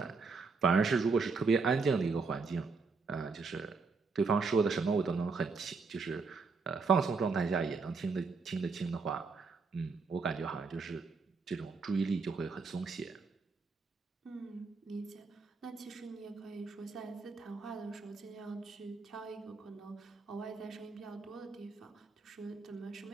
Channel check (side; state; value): left; quieter; 4.5 dB